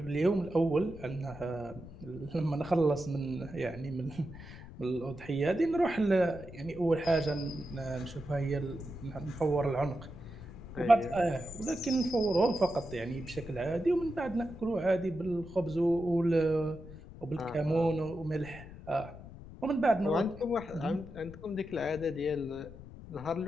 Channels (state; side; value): noise; left; rumble, 15 dB below the sound